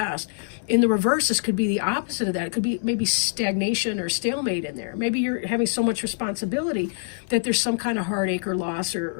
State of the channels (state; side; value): silent; right; 60 dB below the other